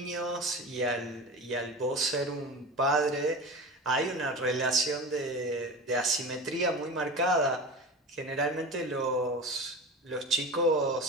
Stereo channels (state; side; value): normal; both; correlation 0.30